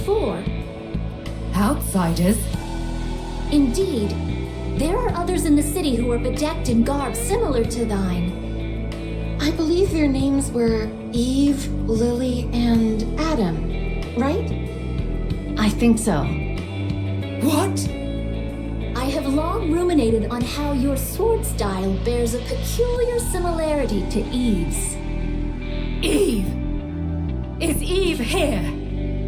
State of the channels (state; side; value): identical; both; correlation 1.00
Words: Outsiders? Indeed. There are others in the city who are bedecked in garb similar to thine. I believe their names were Eve, Lily, and Adam, right? I think so. What? I have long ruminated on how your sword style bears a peculiar similarity to Eve's. Eve! Is Eve here?